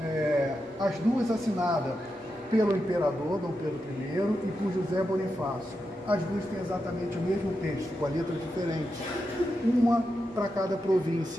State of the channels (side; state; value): both; normal; correlation 0.87